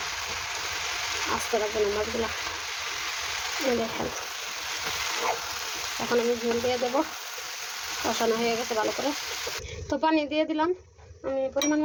আস্তে রাখবো না মাছগুলো। দেখেন এখন আমি ঝোল দিয়ে দেবো, কষানো হয়ে গেছে ভালো করে। তো পানি দিয়ে দিলাম, আমি পরিমাণ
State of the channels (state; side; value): identical; both; correlation 1.00